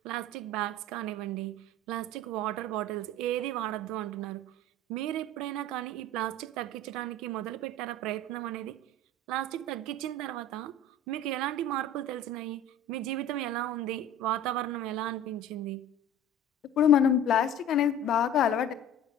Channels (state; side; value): normal; both; correlation 0.40